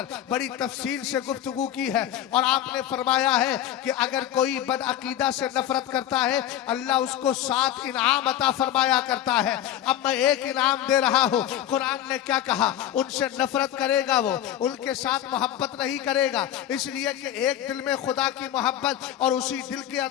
बड़ी तफसील से गुफ्तगू की है और आपने फरमाया है कि अगर कोई बदअकीदा से नफरत करता है अल्लाह उसको 7 इनाम अता फरमाया करता है। अब मैं एक इनाम दे रहा हूं। कुरान ने क्या कहा, उनसे नफरत करेगा वो, उनके साथ मोहब्बत नहीं करेगा, इसलिए कि एक दिल में खुदा की मोहब्बत और उसी दिल के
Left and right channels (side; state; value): right; quieter; 11.8 dB